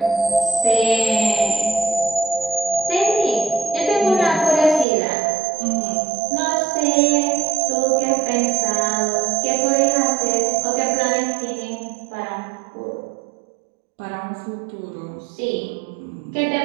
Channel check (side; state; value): left; drops out; at 4.9 s